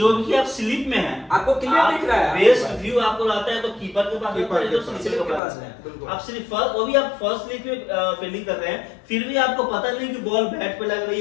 भी आप स्लिप में हैं, आपको क्लियर दिख रहा है, बेस्ट व्यू आपको आता है तो कीपर के पास कीपर आता है, के तो पास, स्लिप के पास बिल्कुल। है। आप सिर्फ फर्स्ट, वो भी आप फर्स्ट स्लिप में फील्डिंग कर रहे हैं, फिर भी आपको पता नहीं कि बॉल बैट पे लग रही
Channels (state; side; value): drops out; right; at 5.4 s